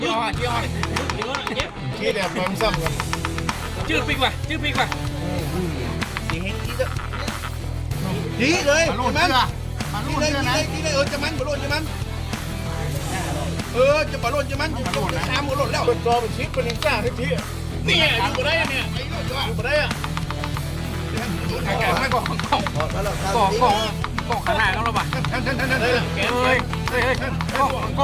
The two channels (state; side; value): identical; both; correlation 1.00